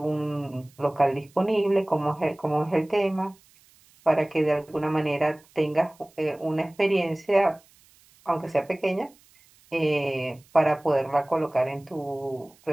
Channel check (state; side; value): noise; right; hiss, 30 dB below the sound